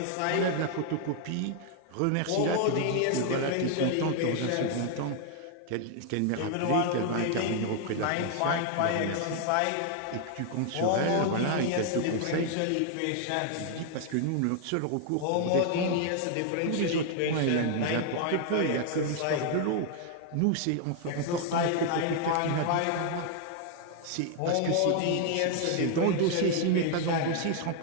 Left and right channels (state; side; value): different; both; correlation 0.00